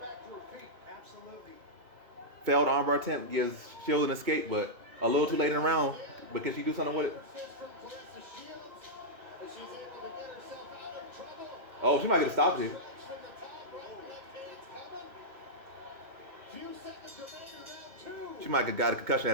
to her feet. Absolutely. Failed armbar attempt gives Shields an escape, but a little too late in the round. But can she do something with it? Oh, she might get a stop here. She might have got a concussion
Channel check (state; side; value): late; left; 2.2 ms